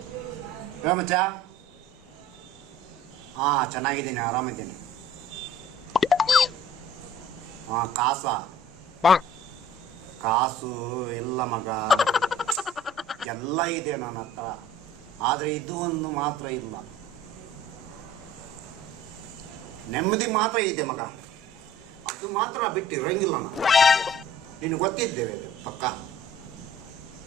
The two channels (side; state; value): both; normal; correlation 0.50